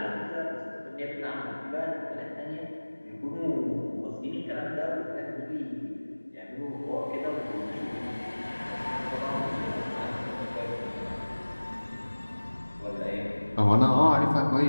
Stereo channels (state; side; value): inverted; both; correlation -1.00